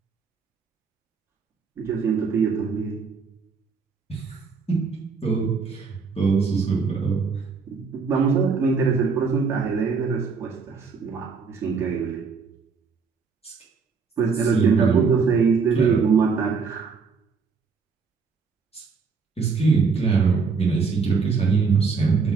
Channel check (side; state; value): left; quieter; 5.1 dB